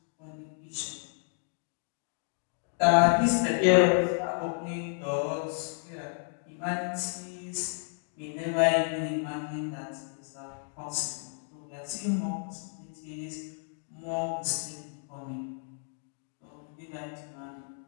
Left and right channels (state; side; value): silent; right; 57 dB below the other